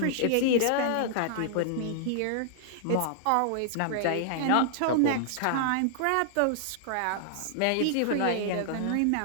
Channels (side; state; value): both; different; correlation -0.01